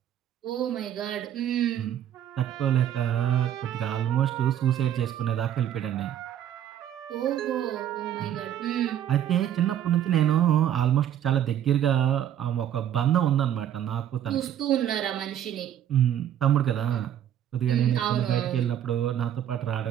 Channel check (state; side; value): quieter; left; 10.5 dB